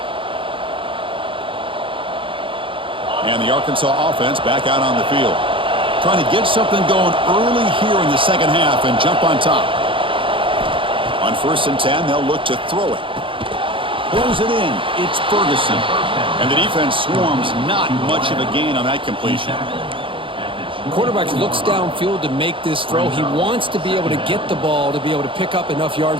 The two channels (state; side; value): late; left; 0.25 ms